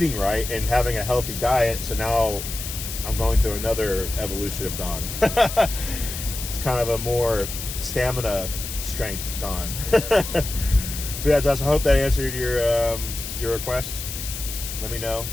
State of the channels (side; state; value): left; noise; hiss, 7 dB below the sound